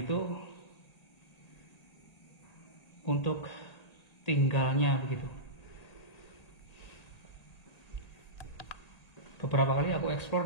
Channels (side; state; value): right; late; 1.8 ms